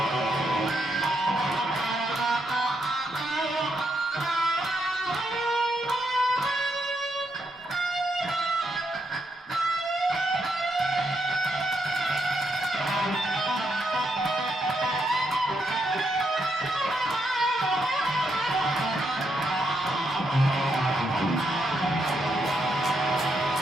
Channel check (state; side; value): normal; both; correlation 0.79